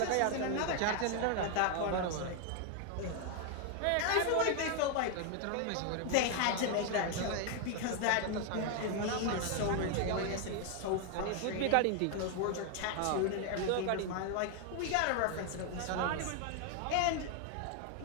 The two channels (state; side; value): different; both; correlation 0.00